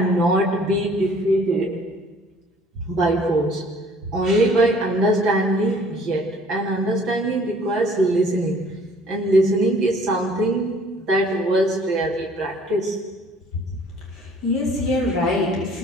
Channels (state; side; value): normal; both; correlation 0.55